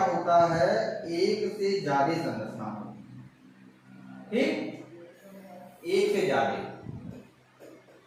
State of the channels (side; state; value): both; identical; correlation 1.00